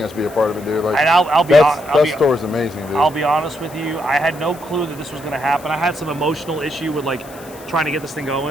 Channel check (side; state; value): left; noise; hiss, 21 dB below the sound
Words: us be a part of it, dude. Like, And that story's amazing, dude. I'll be honest with you. I had no clue that this was going to happen. I had some emotional issue with like trying to get this thing